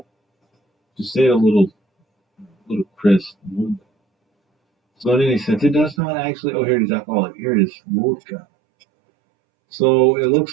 Just say it a little crisp. So in any sense, it does not actually. Oh, here it is. Alcoholic. Here it is. Vodka. So it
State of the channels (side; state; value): left; drops out; at 6.0 s